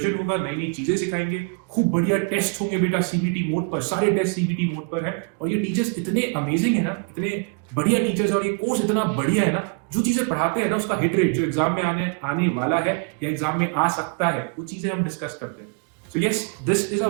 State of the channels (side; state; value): left; quieter; 37.0 dB